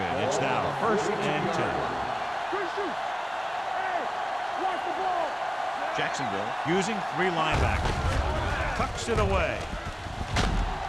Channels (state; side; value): identical; both; correlation 1.00